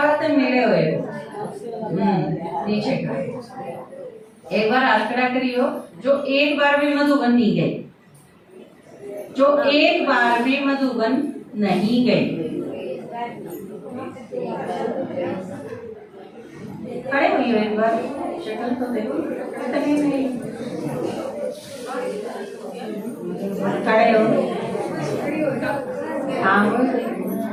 तो मिले हुए नीचे का। एक बार आंकड़ा करियो, जो एक बार भी मधुबन नहीं गए, जो एक बार भी मधुबन नहीं गए, खड़े हुई हो एक बार, शक्ल तो देखो, खड़े हो, हाँ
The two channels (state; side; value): identical; both; correlation 1.00